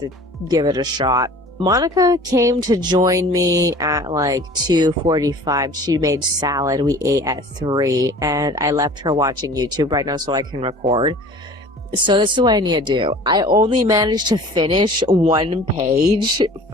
give it a shot. Monica came to join me at like 2:45. She made salad. We ate at 3, and I left her watching YouTube right now so I can record. So this is what I need to do. I only managed to finish one page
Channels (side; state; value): both; normal; correlation 0.45